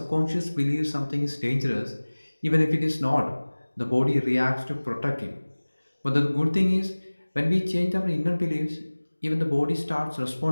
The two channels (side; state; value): both; inverted; correlation -1.00